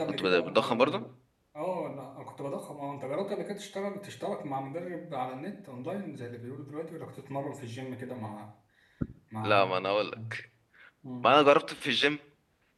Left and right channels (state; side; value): identical; both; correlation 1.00